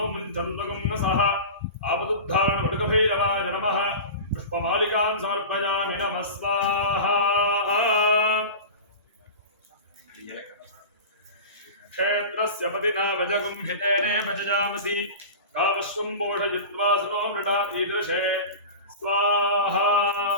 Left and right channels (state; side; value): inverted; both; correlation -0.30